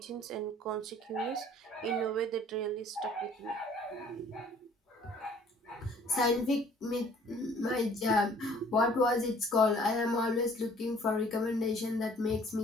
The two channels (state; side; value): normal; both; correlation 0.55